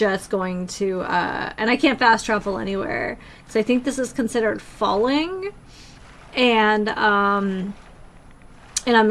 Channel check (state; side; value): identical; both; correlation 1.00